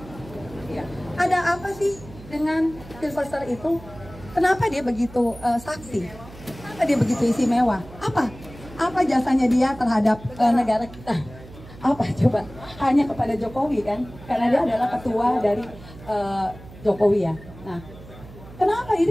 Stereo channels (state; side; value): noise; right; hum, 18 dB below the sound